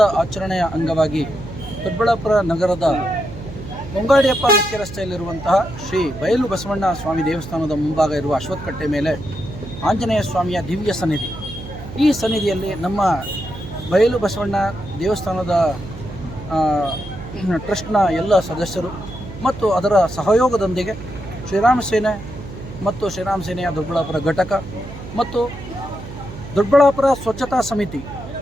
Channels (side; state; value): right; noise; hum, 12 dB below the sound